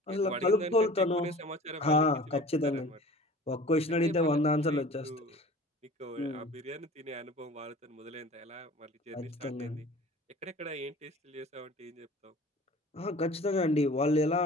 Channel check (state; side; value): normal; both; correlation 0.43